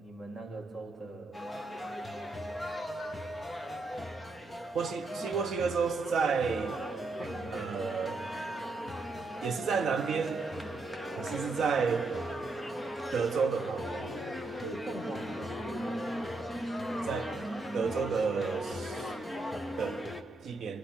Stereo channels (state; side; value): quieter; left; 3.4 dB